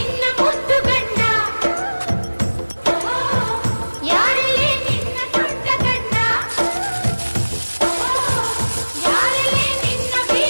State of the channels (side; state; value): both; inverted; correlation -1.00